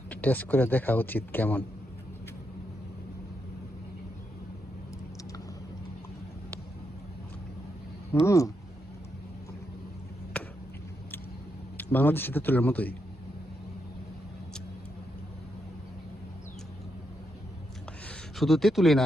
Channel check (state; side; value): normal; both; correlation 0.82